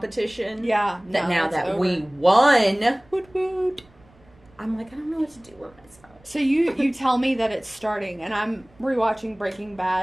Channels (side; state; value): right; noise; rumble, 29 dB below the sound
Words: Yeah. That now that we won, woot woot, I'm like, I don't know what to do with myself. So you tell me that it's starting, and I'm rewatching Breaking